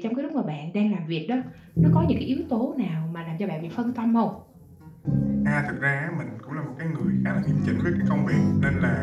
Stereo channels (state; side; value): identical; both; correlation 1.00